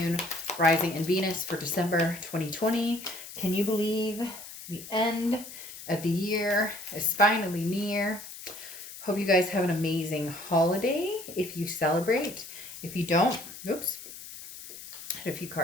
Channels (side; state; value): left; noise; hiss, 13 dB below the sound